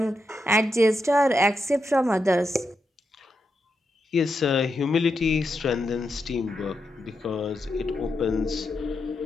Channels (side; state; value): both; normal; correlation 0.85